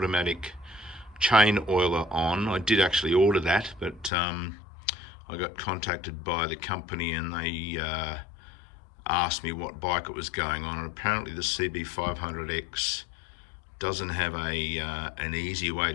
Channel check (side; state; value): right; drops out; at 4.1 s